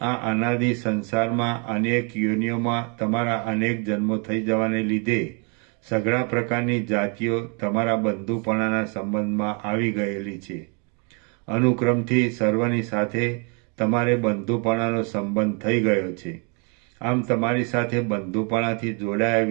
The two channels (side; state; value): left; quieter; 35.5 dB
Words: અનાદિ સંસારમાં અનેક યોનિઓમાં તમારા અનેક જન્મો થઈ જવાને લીધે સઘળા પ્રકારની જાતિઓ તમારા બંધુપણાના સંબંધમાં આવી ગયેલી છે. અનુક્રમથી સર્વની સાથે તમારે બંધુપણાનો સંબંધ થઈ ગયો છે. આમ તમારી સાથે બંધુપણાથી જોડાયા